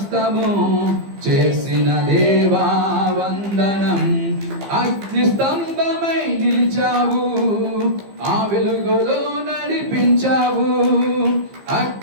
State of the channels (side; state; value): left; late; 15 ms